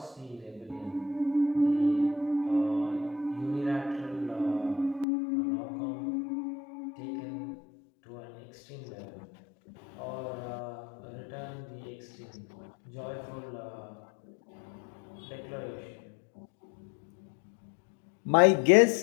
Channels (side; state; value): right; drops out; at 5.1 s